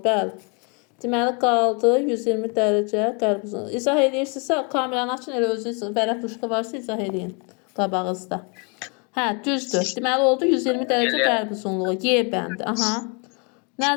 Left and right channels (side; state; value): right; quieter; 34.9 dB